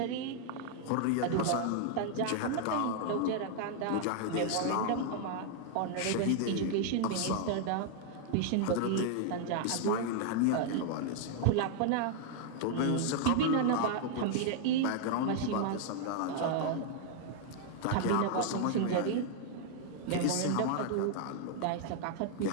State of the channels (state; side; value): different; both; correlation 0.00